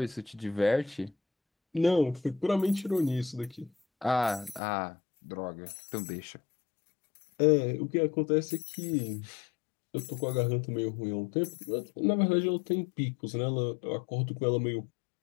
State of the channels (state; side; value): drops out; right; at 4.6 s